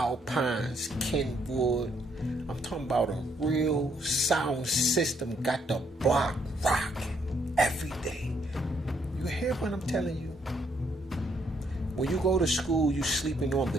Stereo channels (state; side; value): normal; both; correlation 0.71